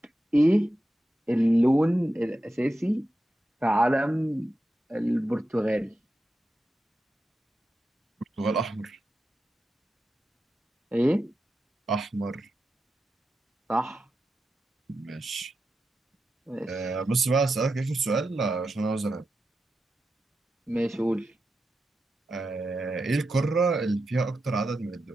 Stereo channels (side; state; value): both; normal; correlation 0.90